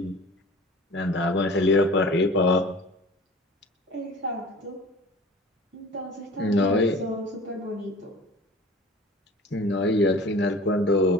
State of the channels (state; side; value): normal; both; correlation 0.41